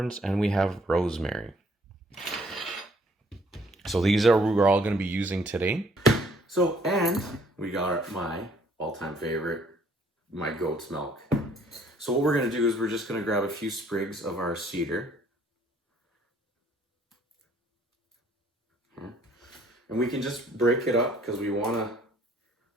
and we have rosemary. So these are what we're all going to be using today. So, and we got my all-time favorite, my goat's milk. So what we're going to do is we're just going to grab a few sprigs of our cedar. And we can just break it up because we want to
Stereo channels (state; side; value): normal; both; correlation 0.62